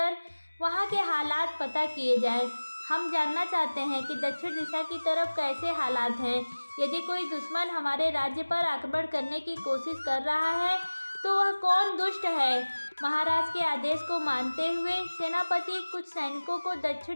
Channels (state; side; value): inverted; both; correlation -1.00